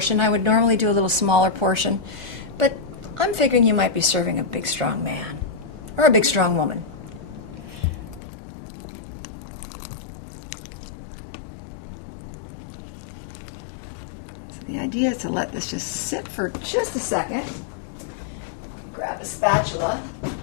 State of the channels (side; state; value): right; drops out; at 8.2 s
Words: I would normally do a little smaller portion, but I'm figuring you might be serving a big strong man or a big strong woman. So the idea is to let this just sit for just a second. Grab a spatula.